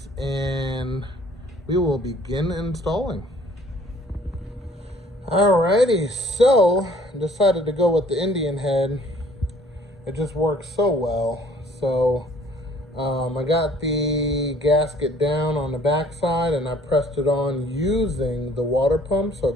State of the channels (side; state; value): both; normal; correlation 0.57